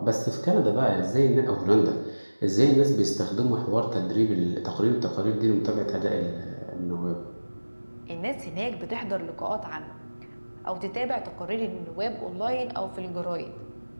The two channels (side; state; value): both; inverted; correlation -1.00